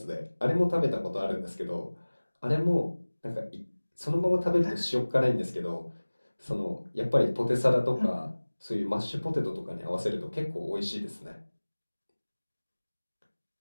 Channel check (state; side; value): inverted; both; correlation -1.00